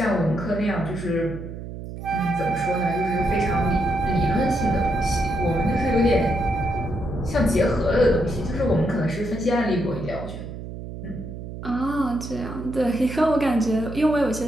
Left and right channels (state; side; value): noise; right; hum, 10 dB below the sound